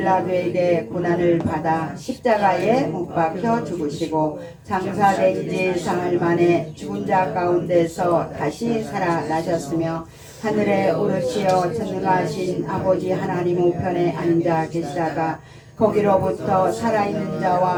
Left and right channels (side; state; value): both; identical; correlation 1.00